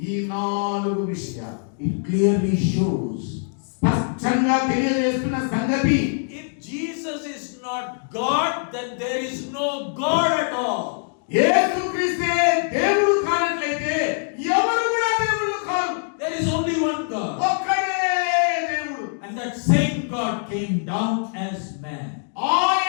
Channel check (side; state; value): right; silent; 62 dB below the other